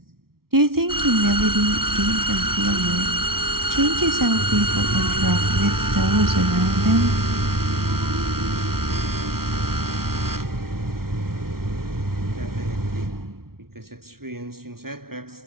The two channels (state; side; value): late; left; 0.94 ms